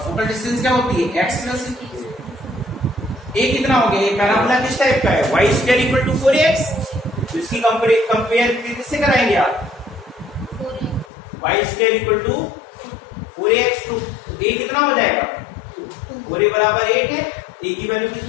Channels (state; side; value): drops out; right; at 11.1 s